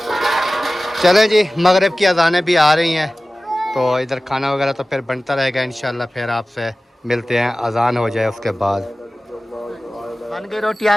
चलें जी, मगरिब की अज़ानें भी आ रही हैं तो इधर खाना वगैरह तो फिर बनता रहेगा इंशाल्लाह। फिर आपसे मिलते हैं, अज़ान हो जाए उसके बाद। बन गई रोटी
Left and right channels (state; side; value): normal; both; correlation 0.97